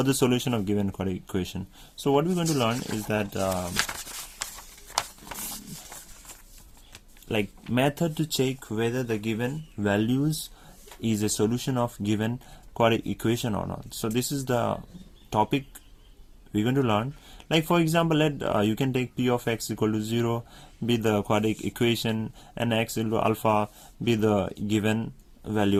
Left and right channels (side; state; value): both; identical; correlation 1.00